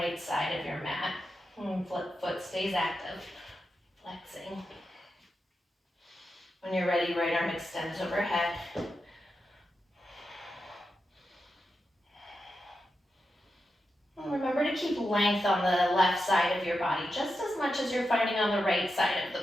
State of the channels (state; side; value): normal; both; correlation 0.88